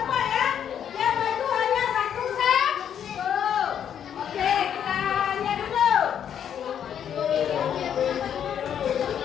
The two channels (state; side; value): quieter; right; 9.0 dB